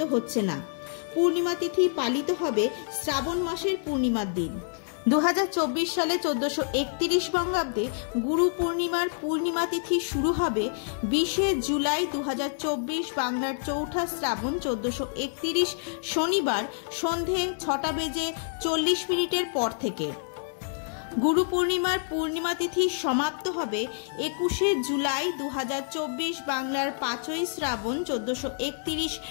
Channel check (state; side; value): silent; right; digital silence